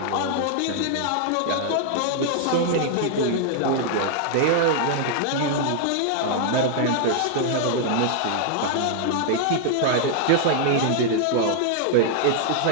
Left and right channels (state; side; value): different; both; correlation -0.01